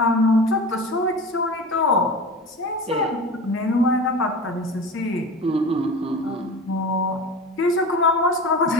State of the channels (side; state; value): both; normal; correlation 0.32